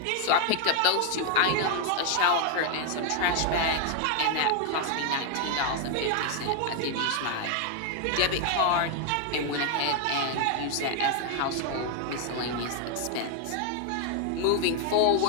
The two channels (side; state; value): both; different; correlation 0.00